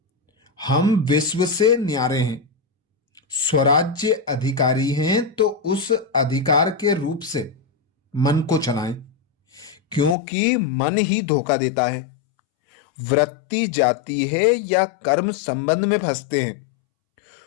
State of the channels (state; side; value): drops out; right; at 10.2 s